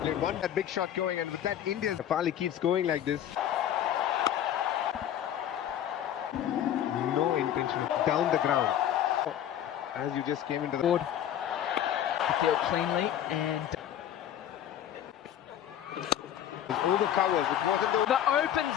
one. That big shot going, and with that India. Fali keeps going like this. No intention of down the ground. As you just came into the board. Field cleanly and. All the covers. It wasn't the That opens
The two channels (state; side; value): quieter; right; 10.6 dB